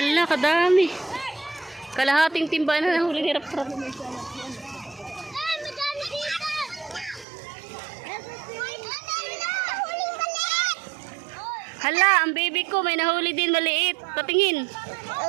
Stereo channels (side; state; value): left; drops out; at 7.2 s